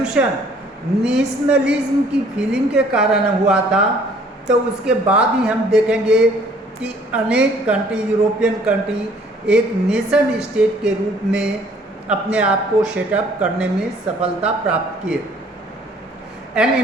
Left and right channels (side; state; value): both; normal; correlation 0.58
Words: नेशनलिज्म की फीलिंग के कारण हुआ था. तो उसके बाद ही हम देखेंगे कि अनेक कंट्री, यूरोपियन कंट्री एक नेशन स्टेट के रूप में अपने आप को सेटअप करने में सफलता प्राप्त किए. An